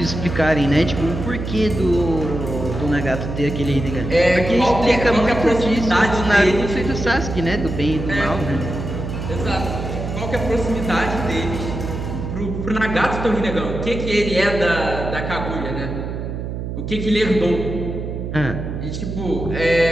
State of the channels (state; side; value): noise; right; hum, 5 dB below the sound